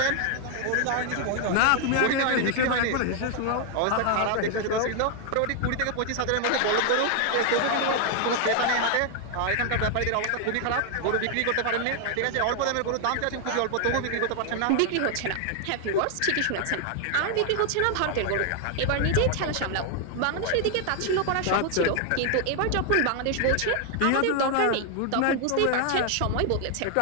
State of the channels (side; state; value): both; different; correlation 0.00